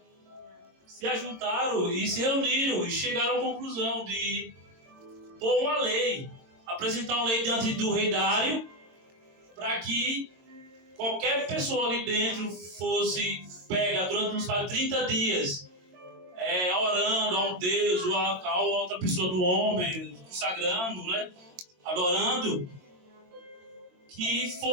se ajuntaram e se reuniram e chegaram à conclusão de pôr uma lei, apresentar uma lei diante do rei Dário, para que qualquer pessoa ali dentro fosse pega durante uns 30 dias, orando a um Deus ou a outra pessoa do homem, consagrando, né, adorando, que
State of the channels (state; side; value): late; left; 22 ms